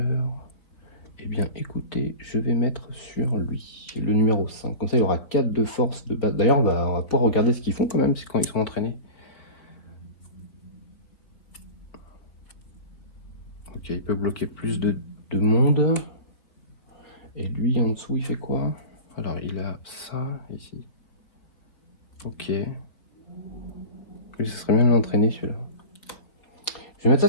Eh bien, écoutez, je vais mettre sur lui, le numéro 5. Comme ça, il aura 4 de force de base. D'ailleurs, on va pouvoir regarder ce qu'ils font quand même, c'est quand ils sont entraînés. Ok, il peut bloquer plus de monde. Et lui, en dessous, il fait quoi? Alors, il a ça, ici. Ok. Lui, ce serait bien de l'entraîner, celui-là. Je vais mettre ça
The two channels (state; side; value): late; right; 3.8 ms